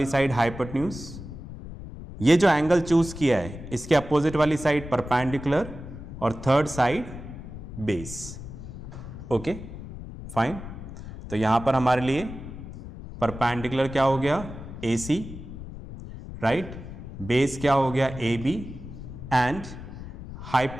साइड हाइपोटेन्यूज, ये जो एंगल चूज किया है इसके अपोजिट वाली साइड परपेंडिकुलर और third side base, okay, fine. तो यहां पर हमारे लिए परपेंडिकुलर क्या हो गया, ए सी, राइट, बेस क्या हो गया, ए बी, एंड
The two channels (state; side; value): noise; left; rumble, 11 dB below the sound